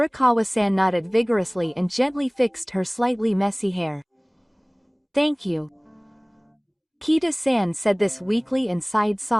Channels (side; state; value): both; identical; correlation 1.00